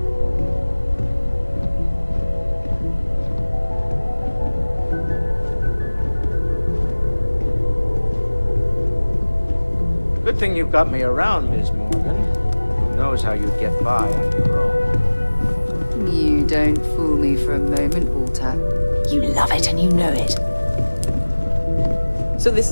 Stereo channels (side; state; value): both; inverted; correlation -1.00